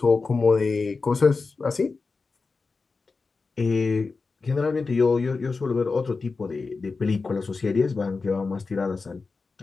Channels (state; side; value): quieter; right; 4.2 dB